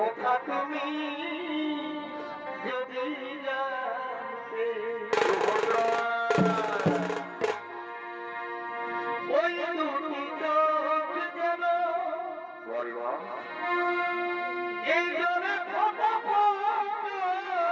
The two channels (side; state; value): both; identical; correlation 1.00